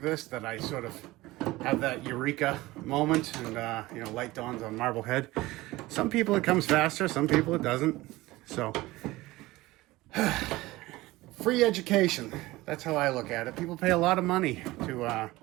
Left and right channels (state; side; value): quieter; left; 19.1 dB